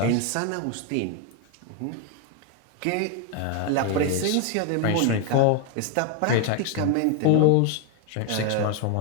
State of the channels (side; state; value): both; different; correlation 0.01